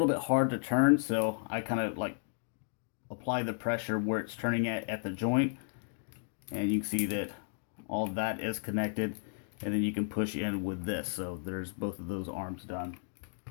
bit hard to turn, so I kind of like apply the pressure where it's turning at the joint. And you can see that all that is connected. And then you can push in with this. So there's both of those arms done.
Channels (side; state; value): right; silent; digital silence